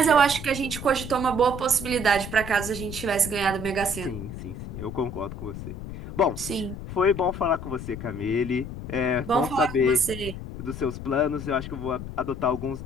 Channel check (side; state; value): left; noise; rumble, 9 dB below the sound